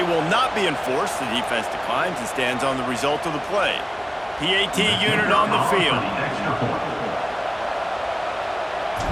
will not be enforced. The defense declines and stands on the result of the play. PAT unit on the field.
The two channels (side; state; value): both; identical; correlation 1.00